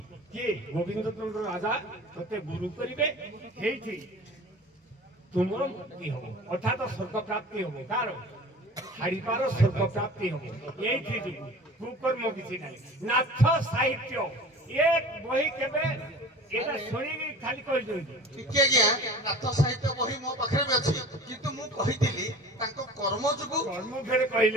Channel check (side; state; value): both; normal; correlation 0.40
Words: କିଏ ଗୋବିନ୍ଦ ଚନ୍ଦ୍ର ରାଜା ତୋତେ ଗୁରୁ କରିବେ ହେଇଠି ତୁମର ମୁକ୍ତି ହବ ଅର୍ଥାତ ସ୍ୱର୍ଗ ପ୍ରାପ୍ତି ହବ କାର ହାଡ଼ିପାର ସ୍ୱର୍ଗ ପ୍ରାପ୍ତି ହବ ଏଇଠି ଯିବୁ କୁକର୍ମ କିଛି ନାହିଁ ନାଥ ସାହିତ୍ୟ ଏ ବହି କେବେ ଏଇଟା ଶୁଣିକି ଖାଲି କହିଛନ୍ତି ଟିକେ ଆଜ୍ଞା ନାଥ ସାହିତ୍ୟ ବହି ମୋ ପାଖରେ ବି ଅଛି କିନ୍ତୁ ମୁଁ କହିଥିଲି ତାଙ୍କ କର୍ମ ଯୋଗୁ କର୍ମ ଫେରେ